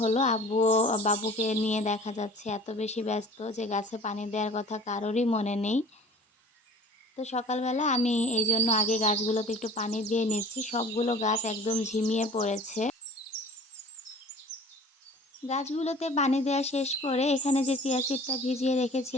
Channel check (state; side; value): normal; both; correlation 0.45